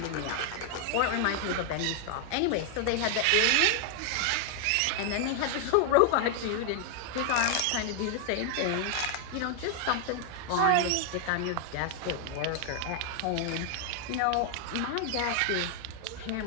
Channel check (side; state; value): both; different; correlation 0.00